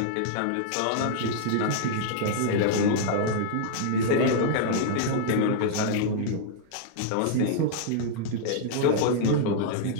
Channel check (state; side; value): different; both; correlation -0.02